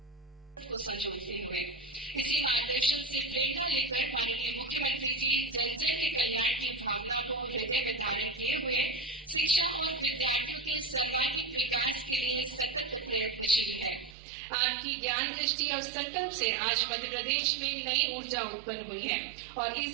को संजोते हुए। इसी मार्गदर्शन से प्रेरणा लेकर माननीय मुख्यमंत्री जी जन जन के कल्याण की भावना को हृदय में धारण किए हुए शिक्षा और विद्यार्थियों के सर्वांगीण विकास के लिए सतत प्रयत्नशील है। आपकी ज्ञान दृष्टि और संकल्प से आज मध्य प्रदेश में नई ऊर्जा उत्पन्न हुई है और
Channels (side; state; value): left; drops out; at 14.2 s